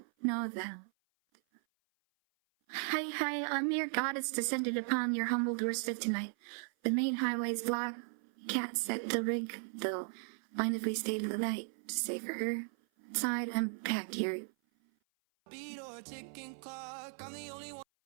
know them. Hi, I'm your goddess descended upon your humble doorstep tonight. The main highway's blocked. Cat set the rig, though. Mind if we stay to the night to save for her? Inside, I'm packed here.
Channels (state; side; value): silent; left; 53 dB below the other